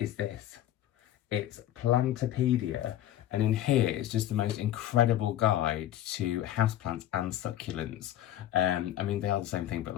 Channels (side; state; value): right; quieter; 12.4 dB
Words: this. It's Plantopedia, and in here it's just the most incredible guide to houseplants and succulents. I mean, they are the same thing, but